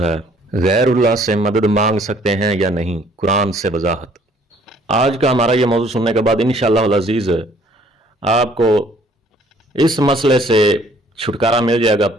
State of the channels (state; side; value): normal; both; correlation 0.59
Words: गैरुल्लाह से मदद मांग सकते हैं या नहीं, कुरान से वजाहत। आज का हमारा ये मौजू सुनने के बाद इंशाअल्लाह अल अज़ीज़ आपको इस मसले से छुटकारा मिल जाएगा,